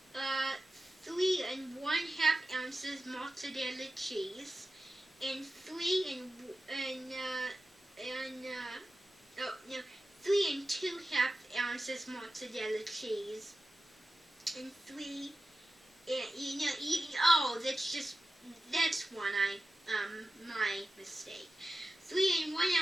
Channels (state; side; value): normal; both; correlation 0.93